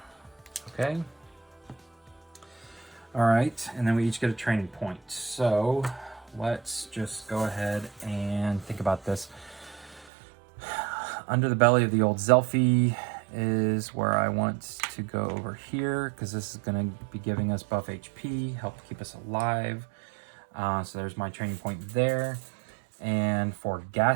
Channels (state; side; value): drops out; left; at 10.1 s